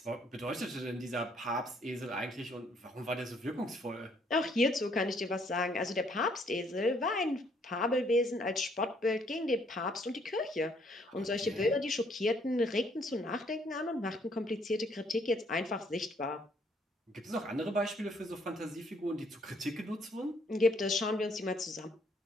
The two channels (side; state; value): both; normal; correlation 0.67